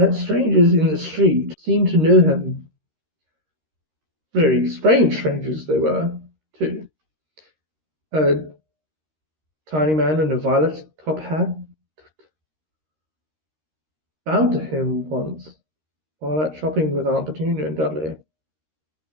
strangers in the street seemed to know him. Very strange strangers they were, too. A tiny man in a violet top hat bowed to him once while out shopping with Aunt Petunia and Dudley.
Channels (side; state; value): left; late; 13 ms